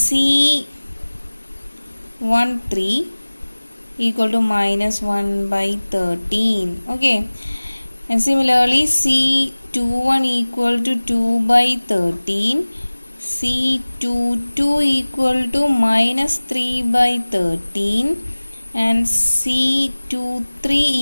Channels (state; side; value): inverted; both; correlation -1.00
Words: equal to minus 1 by 13. Okay, and similarly C21 equal to 2 by 13, C22 equal to minus 3 by 13, and C23